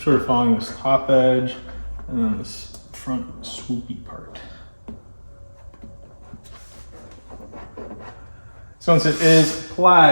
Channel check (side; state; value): both; inverted; correlation -1.00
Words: sort of following this top edge and then this front swoopy part. So once it is